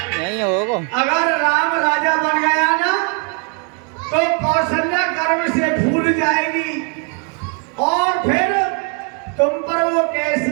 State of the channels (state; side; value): quieter; left; 35.1 dB